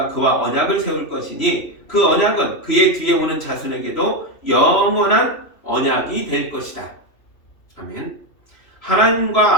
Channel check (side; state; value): right; late; 3.0 ms